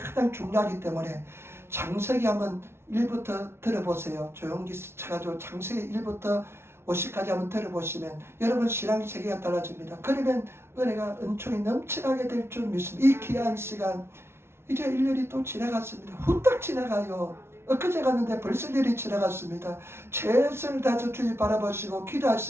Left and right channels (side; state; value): left; late; 0.12 ms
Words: 중요하기 때문에 창세기 한번 1부터 들어보세요. 조영기 쳐가지고 창세기 1부터 50까지 한번 들어보시면 여러분 신앙 세계가 달라집니다. 그러면 은혜가 은총이 넘쳐나게 될 줄 믿습니다. 이 귀한 시간, 이제 1년이 또 지나갔습니다. 후딱 지나가요. 엊그제 갔는데 벌써 1년이 지나갔습니다. 최선을 다해서 주님 바라보시고